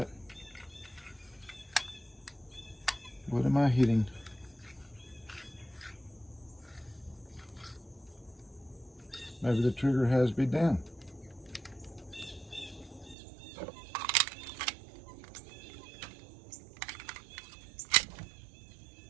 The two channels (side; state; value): left; drops out; at 13.2 s